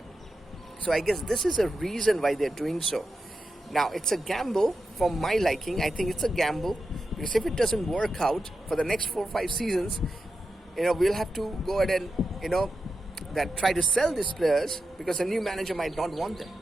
So I guess this is a reason why they're doing so. Now, it's a gamble for my liking. I think it's a gamble because if it doesn't work out for the next 4 or 5 seasons, we'll have to go ahead and, that try to sell these players because a new manager might not want them.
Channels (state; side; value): normal; both; correlation 0.90